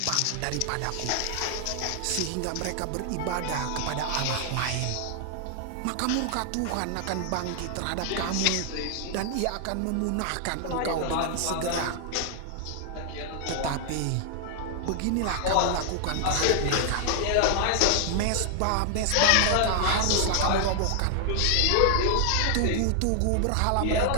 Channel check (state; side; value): different; both; correlation 0.00